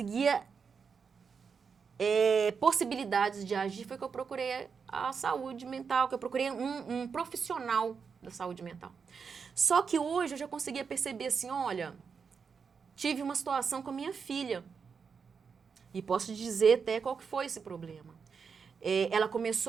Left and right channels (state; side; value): quieter; left; 5.9 dB